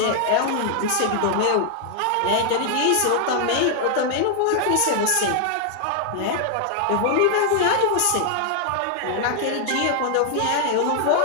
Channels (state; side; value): different; both; correlation 0.00